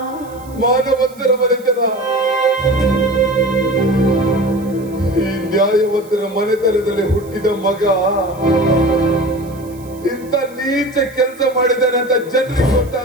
ಮಾನವಂತರ ಮನೆತನ. ಈ ನ್ಯಾಯವಂತರ ಮನೆತನದಲ್ಲಿ ಹುಟ್ಟಿದ ಮಗ ಇಂಥ ನೀಚ ಕೆಲಸ ಮಾಡಿದ್ದಾನೆ ಅಂತ ಜನರಿಗೆ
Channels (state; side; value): noise; right; hiss, 24 dB below the sound